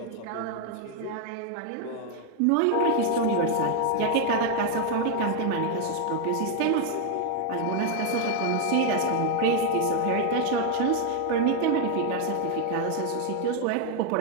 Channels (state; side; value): different; both; correlation 0.00